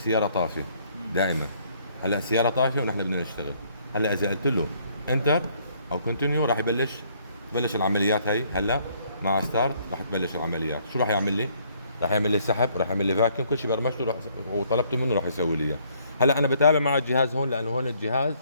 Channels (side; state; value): both; inverted; correlation -0.65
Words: طافيه دائما. هلا السياره طافيه ونحن بدنا نشتغل. هلا اذا قلت له انتر او كونتينيو راح تبلش العمليات هي. هلا مع ستارت راح تبلش العمليات. شو راح يعمل لي؟ راح يعمل لي سحب، راح يعمل لي فاكيوم، كل شيء برمجته وطلبته منه راح يسوي لي اياه. هلا انا بتابع مع الجهاز هون، لانه هون الجهاز